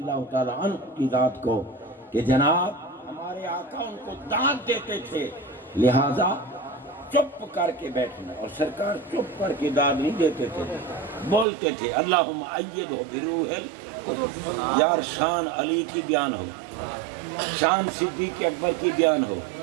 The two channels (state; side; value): drops out; left; at 11.5 s